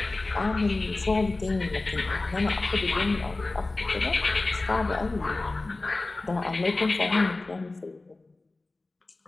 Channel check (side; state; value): right; quieter; 3.2 dB